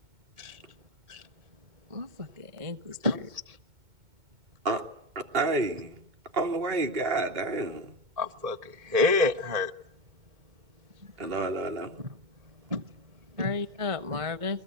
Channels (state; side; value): late; left; 2.2 ms